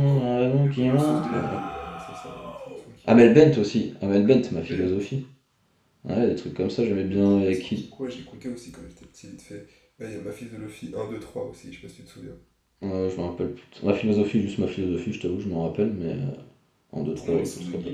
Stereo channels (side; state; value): both; identical; correlation 1.00